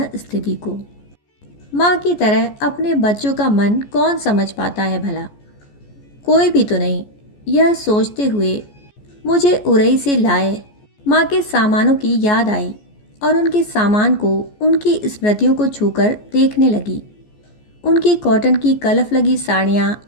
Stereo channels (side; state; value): right; late; 14 ms